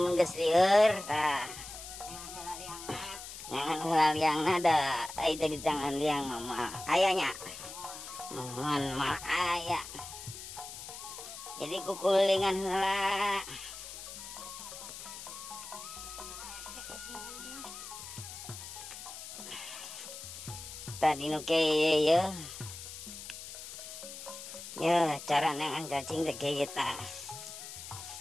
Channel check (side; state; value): left; noise; hiss, 11 dB below the sound